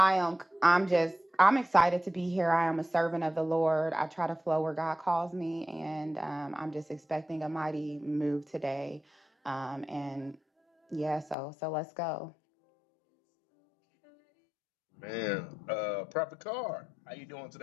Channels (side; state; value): right; drops out; at 11.4 s